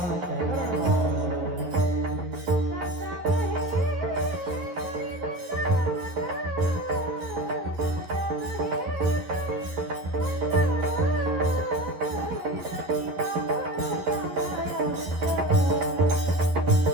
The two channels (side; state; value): left; late; 11 ms